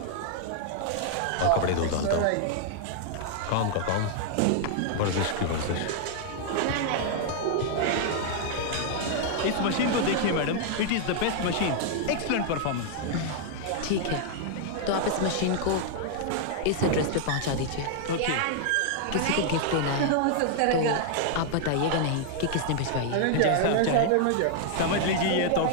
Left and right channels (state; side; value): different; both; correlation -0.01